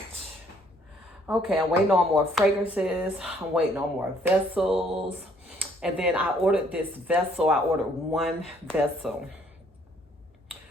Okay, I'm waiting on more fragrances. I'm waiting on more vessels. And then I ordered this vessel. I ordered one vessel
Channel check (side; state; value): both; normal; correlation 0.64